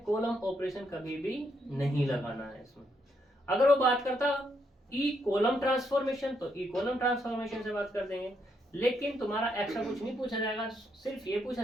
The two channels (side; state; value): both; normal; correlation 0.77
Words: कॉलम ऑपरेशन कभी भी नहीं लगाना है इसमें। अगर वो बात करता ई कॉलम ट्रांसफॉर्मेशन तो ई कॉलम ट्रांसफॉर्मेशन से बात कर देंगे, लेकिन तुम्हारा एक्स्ट्रा कुछ नहीं पूछा जाएगा, सिर्फ ये पूछा